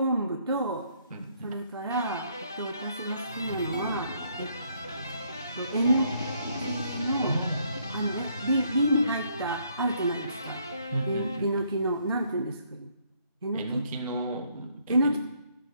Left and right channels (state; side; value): inverted; both; correlation -0.69